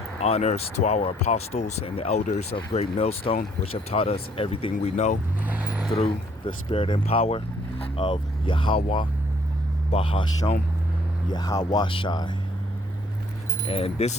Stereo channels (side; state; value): both; normal; correlation 0.65